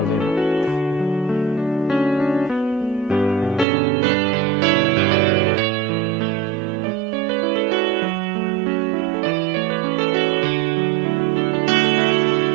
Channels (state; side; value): drops out; left; at 3.7 s